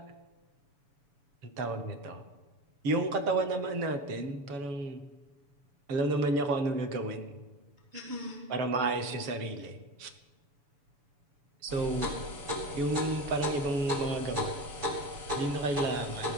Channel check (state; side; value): late; left; 7.0 ms